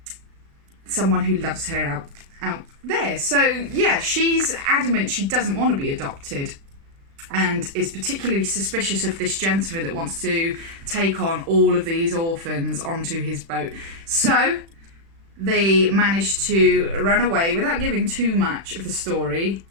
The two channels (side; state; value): left; late; 36 ms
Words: someone who loves her out there. So yeah, she's adamant she doesn't want to be adopted and is particularly suspicious of this gentleman that wants to take on all of these orphans onto his boat. So they managed to run away without giving too much of the story